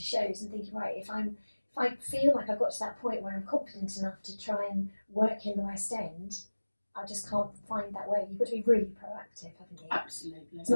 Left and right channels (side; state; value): both; inverted; correlation -1.00